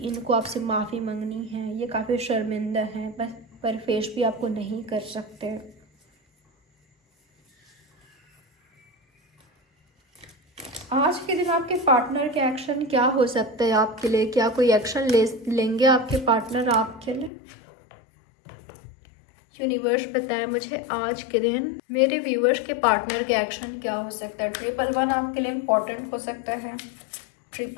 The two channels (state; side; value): drops out; right; at 17.3 s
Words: इनको आपसे माफ़ी मांगनी है, ये काफ़ी शर्मिंदा हैं पर फेस भी आपको नहीं कर सकते। आज के दिन आपके पार्टनर के एक्शन क्या हो सकता है आपके लिए? क्या कोई एक्शन लेंगे आपके पार्टनर आपके लिए? यूनिवर्स बताए मुझे आज के दिन मेरे व्यूवर्स के पार्टनर के एक्शन क्या हो सकता है। 111 आपके लिए इम्पोर्टेंट हो सकता है।